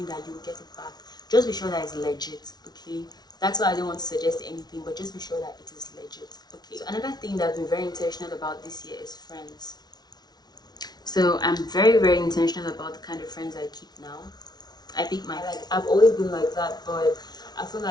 that you'll get it back. Just be sure that it's legit, okay? That's why I don't want to suggest anything, but just be sure that it is legit, okay? So another thing that I've been very intentional about this year is friends. So I'm very, very intentional about the kind of friends I keep now. I've always been like that, but I feel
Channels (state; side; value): late; right; 0.19 ms